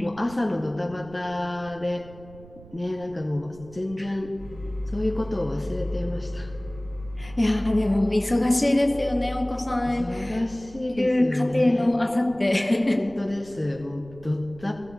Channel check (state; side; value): noise; right; rumble, 20 dB below the sound